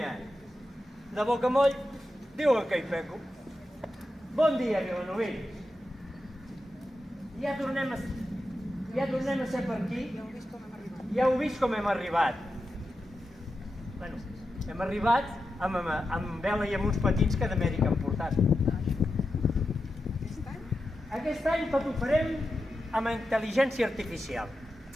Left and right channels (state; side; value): normal; both; correlation 0.90